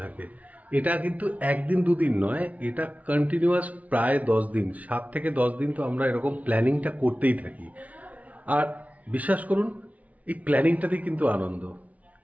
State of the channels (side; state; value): left; late; 0.070 ms